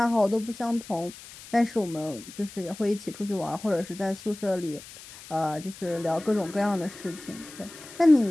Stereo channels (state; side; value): noise; left; hiss, 17 dB below the sound